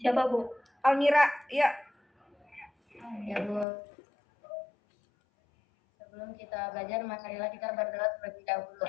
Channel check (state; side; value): drops out; right; at 3.7 s